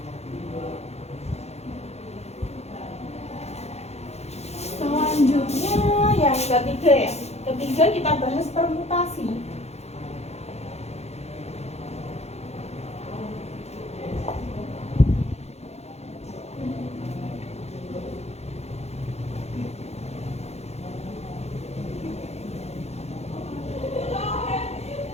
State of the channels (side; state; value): right; late; 0.31 ms